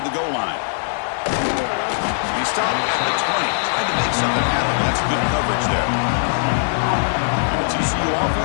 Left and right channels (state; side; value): silent; right; 66 dB below the other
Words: the goal line. He stopped at the 20. Tried to make something happen, but that's good coverage there. And the TCU